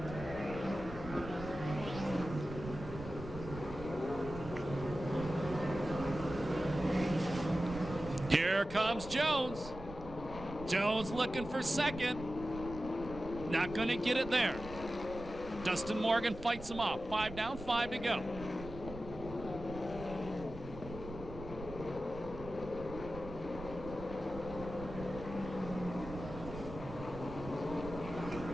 Here comes Jones. Jones looking for second. Not going to get it there. Dustin Morgan fights him off. 5 down, 5 to go.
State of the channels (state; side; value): noise; right; rumble, 12 dB below the sound